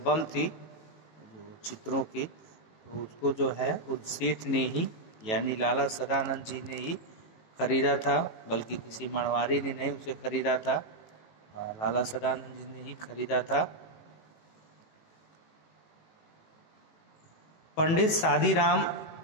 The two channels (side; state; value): right; late; 19 ms